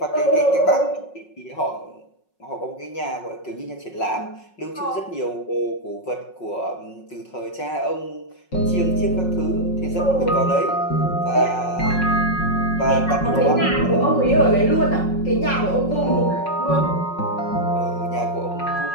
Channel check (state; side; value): late; right; 5.5 ms